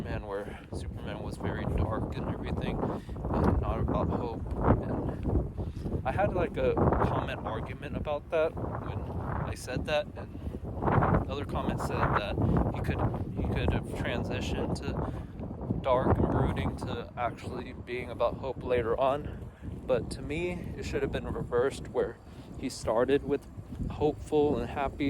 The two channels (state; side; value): identical; both; correlation 1.00